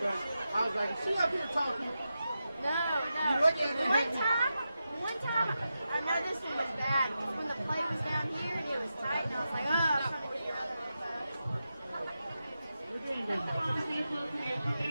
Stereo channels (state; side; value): inverted; both; correlation -0.90